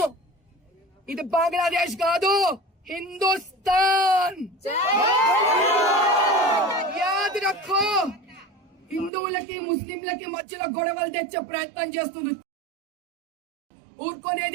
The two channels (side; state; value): left; drops out; at 9.1 s